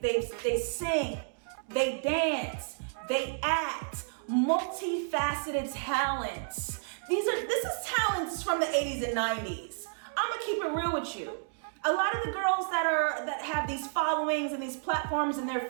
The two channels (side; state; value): left; silent; digital silence